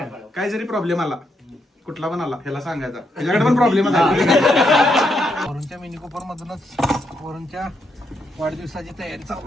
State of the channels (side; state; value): both; normal; correlation 0.79